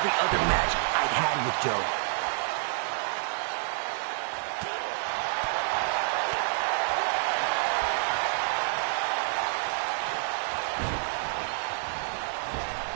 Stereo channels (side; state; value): left; silent; 59 dB below the other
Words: other match I'd had with Joe.